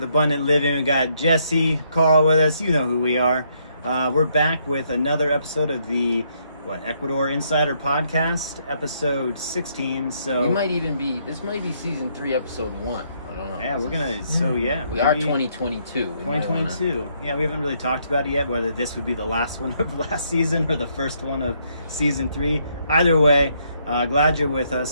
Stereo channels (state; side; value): inverted; both; correlation -0.72